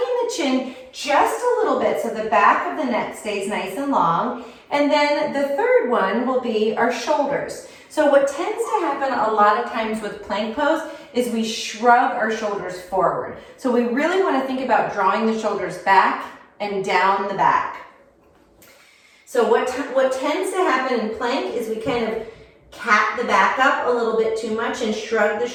chin just a little bit so the back of the neck stays nice and long. And then the third one will be our shoulders. So what tends to happen a lot of times with plank pose is we shrug our shoulders forward. So we really want to think about drawing the shoulders back and down the back. So what tends to happen in plank is we kind of cat the back up a little bit too much and shrug the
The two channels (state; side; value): identical; both; correlation 1.00